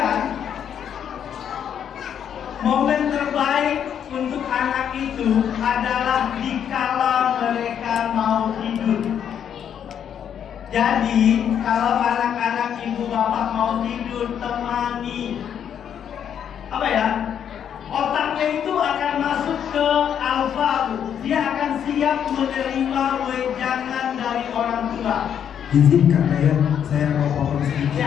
momen terbaik untuk anak itu adalah dikala mereka mau tidur. Jadi kalau anak-anak ibu bapak mau tidur, temani. Otaknya itu akan masuk ke alfa. Dia akan siap menerima wejangan dari orang tua. Izinkan saya mau potong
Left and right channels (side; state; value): right; quieter; 8.8 dB